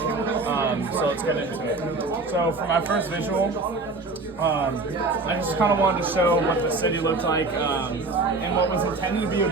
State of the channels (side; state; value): left; quieter; 3.4 dB